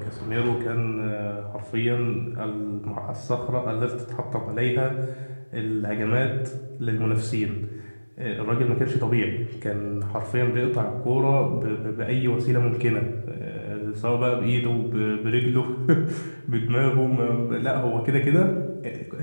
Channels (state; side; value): inverted; both; correlation -1.00